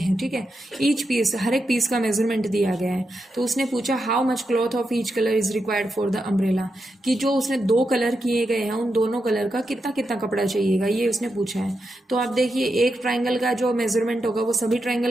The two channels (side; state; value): both; normal; correlation 0.86